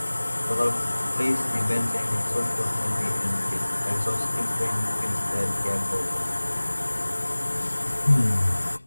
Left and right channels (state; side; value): inverted; both; correlation -1.00